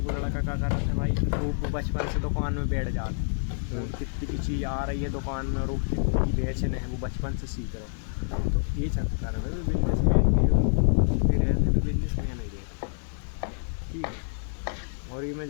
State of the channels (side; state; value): right; silent; digital silence